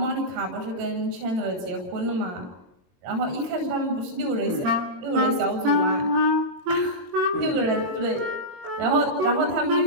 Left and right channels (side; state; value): left; late; 22 ms